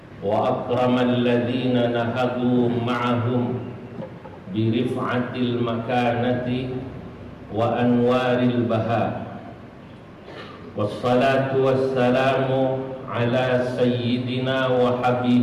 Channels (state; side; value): identical; both; correlation 1.00